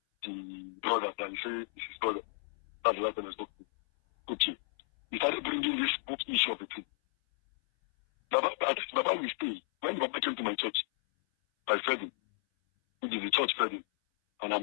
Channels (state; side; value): silent; right; 56 dB below the other